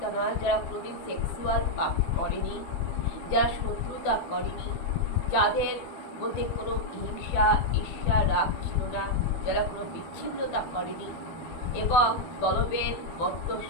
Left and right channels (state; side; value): late; right; 12 ms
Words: নয়, যারা কোনোদিন সেক্সুয়াল পাপ করেনি, যারা শত্রুতা করেনি, যাদের মধ্যে কোনো হিংসা, ঈর্ষা, রাগ ছিল না, যারা কোনো বিচ্ছিন্নতা করেনি এবং দলবেদ,